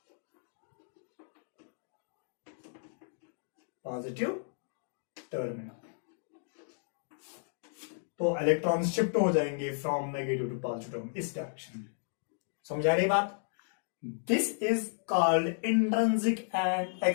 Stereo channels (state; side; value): silent; right; digital silence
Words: positive terminal. तो इलेक्ट्रॉन्स शिफ्ट हो जाएंगे from negative to positive terminal इस डायरेक्शन में। समझ आ रही बात? This is called intrinsic and